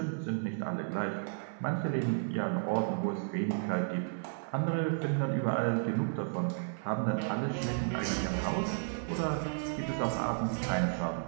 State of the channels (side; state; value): left; silent; 56 dB below the other